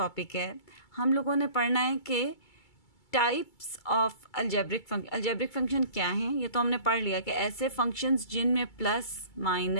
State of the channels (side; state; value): right; late; 2.3 ms